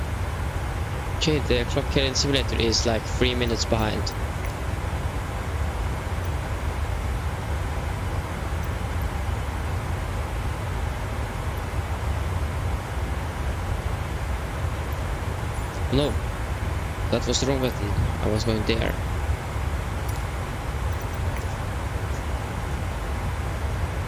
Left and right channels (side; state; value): both; identical; correlation 1.00